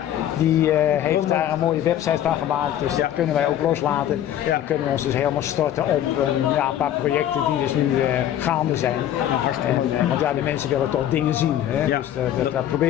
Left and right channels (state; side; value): quieter; right; 11.4 dB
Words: die heeft daar een mooie website van gemaakt, dus dat kunnen wij ook loslaten. Dan kunnen we ons dus helemaal storten op een paar projecten die dus nu gaande zijn. Want de mensen willen toch dingen zien. Hè? Dus dat